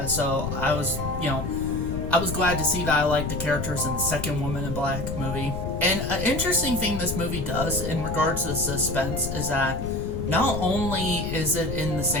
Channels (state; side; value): noise; left; rumble, 5 dB below the sound